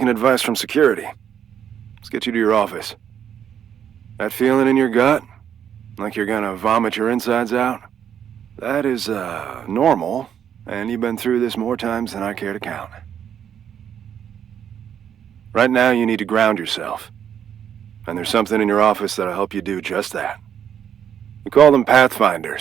advice from security. Let's get you to your office. That feeling in your gut? Like you're gonna vomit your insides out? That is, normal, and you've been through this more times than I care to count. Right now, you need to ground yourself. And there's something in your office that'll help you do just that. We call them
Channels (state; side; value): quieter; left; 9.0 dB